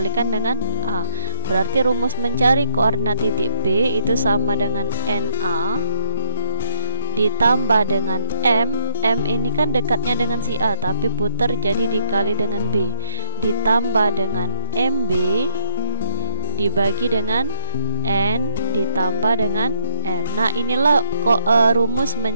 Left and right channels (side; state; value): both; inverted; correlation -0.84